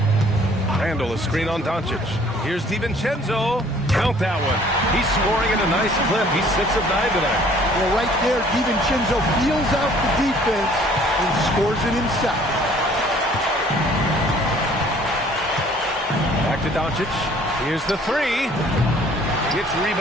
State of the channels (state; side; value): normal; both; correlation 0.56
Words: Randall, a screen on Doncic. Here's DiVincenzo. Count that one. He's scoring at a nice clip. He's 6 of 9 tonight. Well, right there, DiVincenzo feels out the defense and scores it himself. Back to Doncic. Here's the 3. It's